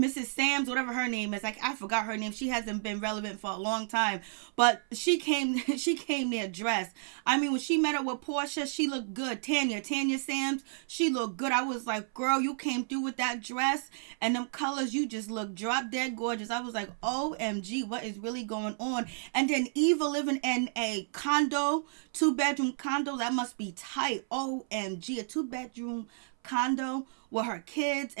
Sam's, whatever her name is. Like, I forgot her name. She hasn't been relevant for a long time, but she came there dressed. I mean, when she met up with Porsha, she looked good. Tanya Sam's, she looked good. I was like, girl, you came through with that dress and them colors. You just look drop dead gorgeous. I was like, OMG, what is really going on? And then Eva living in a condo, 2-bedroom condo. That must be tight. OMG, a 2-bedroom condo with her kids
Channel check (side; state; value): left; silent; 57 dB below the other